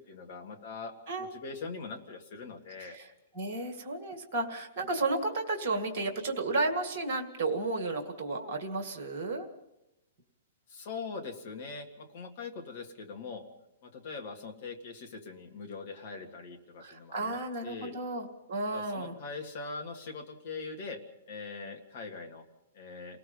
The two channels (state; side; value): inverted; both; correlation -0.49